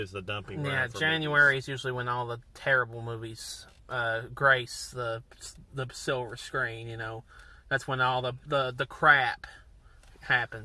it's the dumping ground. Yeah, January is usually when all the terrible movies grace the silver screen, That's when all the crap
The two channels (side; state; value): both; identical; correlation 1.00